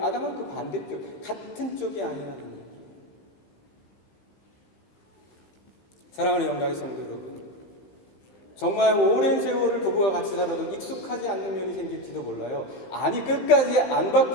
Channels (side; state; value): right; late; 15 ms